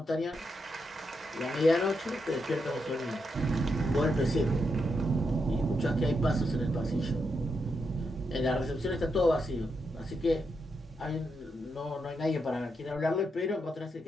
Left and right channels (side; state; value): both; normal; correlation 0.83